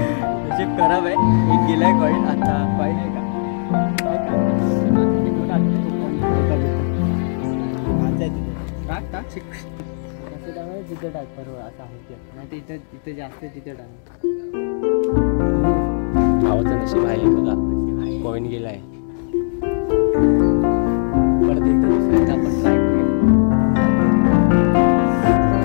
नशीब खराब आहे. एक गेलाय कॉईन. आता कॉईन आहे का टाक तिथे टाक बरोबर असं आहे. नाही तर इथं जास्त तिथे टाक. भावाचं नशीब आहे बघा. कॉइन गेलाय. परत एकदा दुसऱ्यांदा आपण ट्राय करूया.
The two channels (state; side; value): silent; right; digital silence